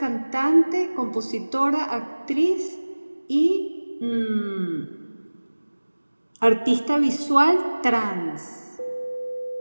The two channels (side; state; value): both; inverted; correlation -1.00